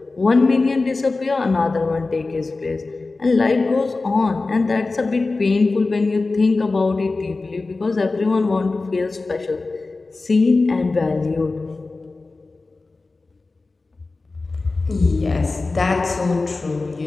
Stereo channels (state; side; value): quieter; right; 3.6 dB